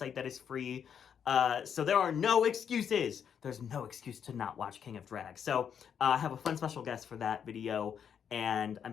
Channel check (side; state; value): right; quieter; 7.9 dB